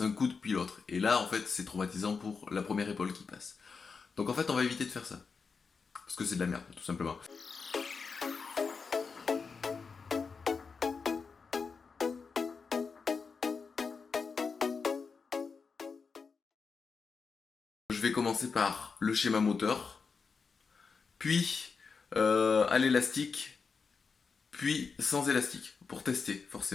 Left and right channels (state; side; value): quieter; right; 5.2 dB